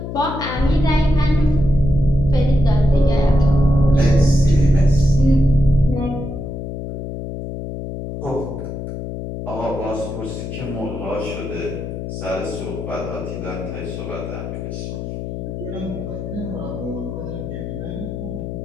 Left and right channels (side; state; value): left; noise; hum, 7 dB below the sound